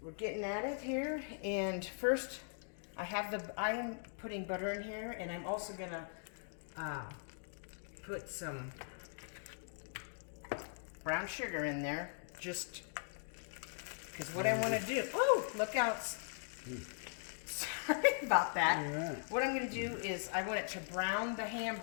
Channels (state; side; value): silent; right; digital silence